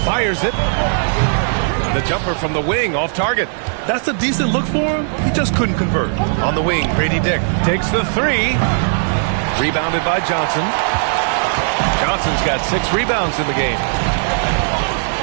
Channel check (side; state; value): left; silent; digital silence